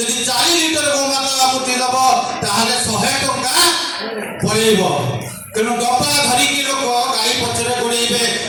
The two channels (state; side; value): identical; both; correlation 1.00